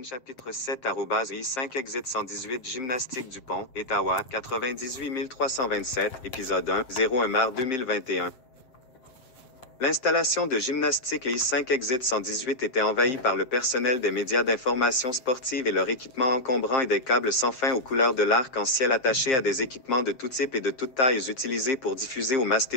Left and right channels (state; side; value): late; right; 7.6 ms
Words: chapitre 7 @I5 exit 118 gymnastique Dupont, Ottawa, 98 327, épisode 1, 01 mars 2021. L'installation de gymnastique I5 exit 118 était envahie par le personnel des médias d'information sportive et leur équipement encombrant et des câbles sans fin aux couleurs de l'arc-en-ciel attachés à des équipements de tout type et de toutes tailles utilisés pour diffuser aux masses